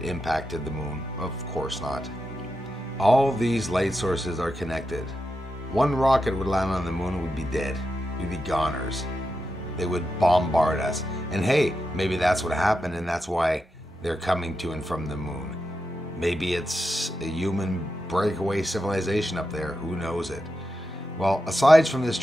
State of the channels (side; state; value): both; normal; correlation 0.88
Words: impacted the moon? Of course not. All these light sources are connected. One rocket would land on the moon and we'd be dead. We'd be goners. They would bombard us. And hey, maybe that's what happened, and that's why they're coming to and from the moon. Maybe it's a human breakaway civilization up there. Who knows it? Well, aside from this